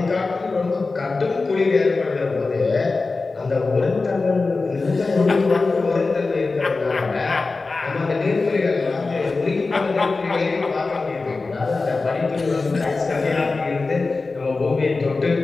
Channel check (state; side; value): quieter; right; 3.8 dB